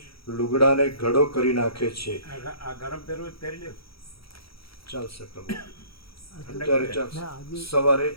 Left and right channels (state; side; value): late; right; 0.75 ms